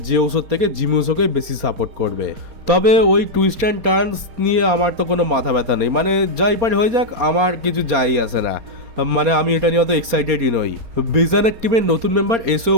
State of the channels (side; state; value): left; late; 4.3 ms